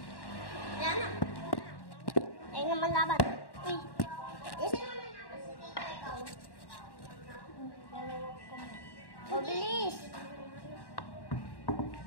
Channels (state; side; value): late; right; 1.1 ms